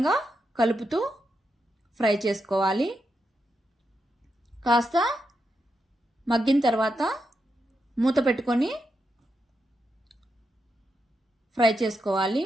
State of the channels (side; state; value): both; normal; correlation 0.85